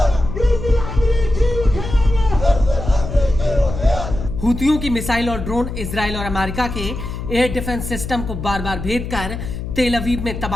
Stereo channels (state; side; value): noise; left; hum, 7 dB below the sound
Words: हूतियों की मिसाइल और ड्रोन इजराइल और अमेरिका के एयर डिफेंस सिस्टम को बार बार भेद कर तेल अवीव में